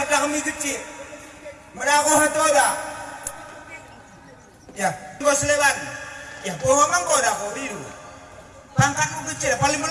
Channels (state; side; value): identical; both; correlation 1.00